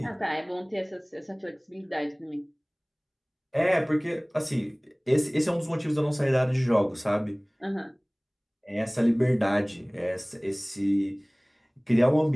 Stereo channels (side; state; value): both; identical; correlation 1.00